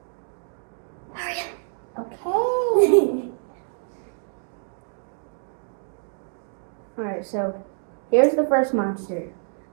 Hurry Okay. Alright, so here's the first monster.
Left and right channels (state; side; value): silent; left; digital silence